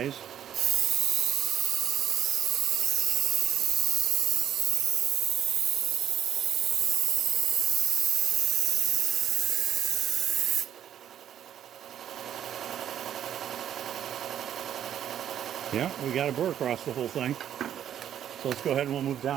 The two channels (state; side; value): quieter; left; 10.1 dB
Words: Yeah, we got a burr across the whole thing. So let's go ahead and we'll move